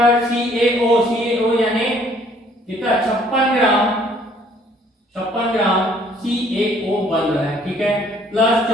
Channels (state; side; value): normal; both; correlation 0.61